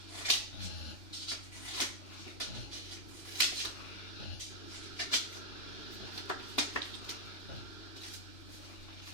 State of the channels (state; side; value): late; right; 3.0 ms